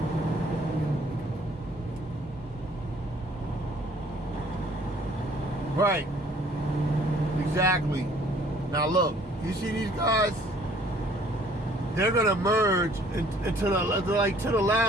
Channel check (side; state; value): both; normal; correlation 0.57